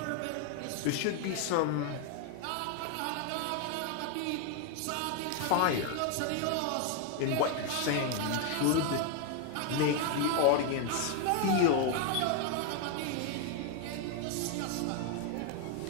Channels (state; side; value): different; both; correlation 0.01